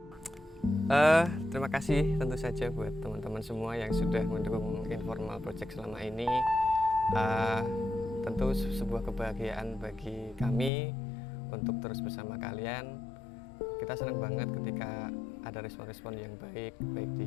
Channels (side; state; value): right; drops out; at 10.7 s